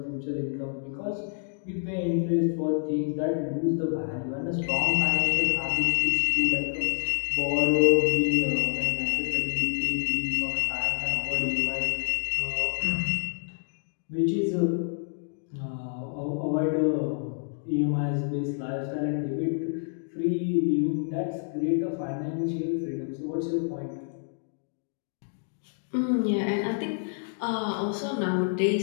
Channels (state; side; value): silent; right; digital silence